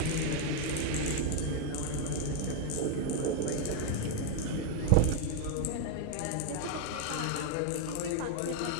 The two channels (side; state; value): both; different; correlation 0.00